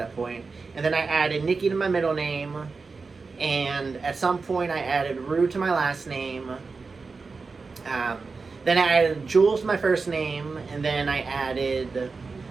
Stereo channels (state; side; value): quieter; left; 4.4 dB